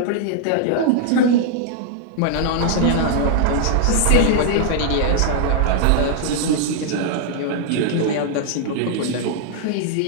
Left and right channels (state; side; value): different; both; correlation -0.01